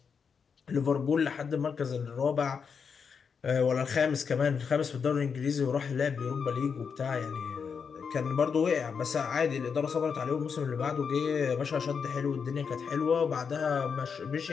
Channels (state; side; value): quieter; right; 6.2 dB